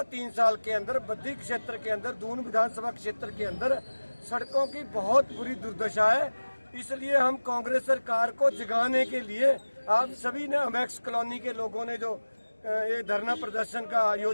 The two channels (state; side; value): inverted; both; correlation -1.00